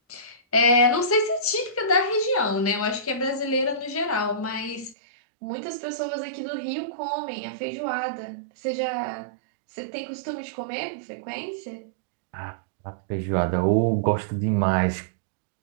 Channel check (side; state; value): left; drops out; at 5.0 s